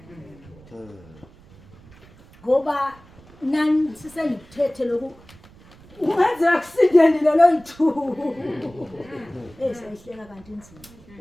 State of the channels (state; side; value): noise; right; rumble, 24 dB below the sound